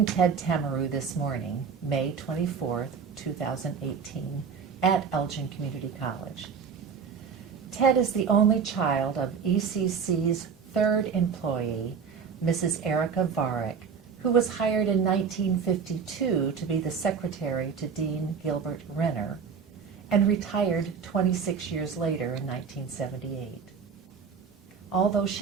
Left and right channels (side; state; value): left; quieter; 6.2 dB